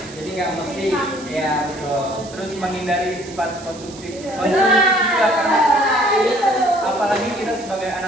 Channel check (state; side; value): noise; right; hiss, 18 dB below the sound